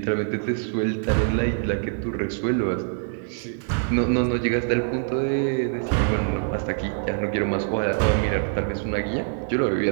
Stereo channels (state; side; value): silent; left; 62 dB below the other